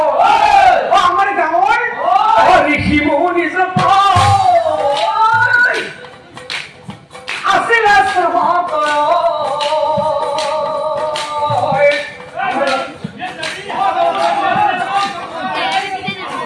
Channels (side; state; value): both; identical; correlation 1.00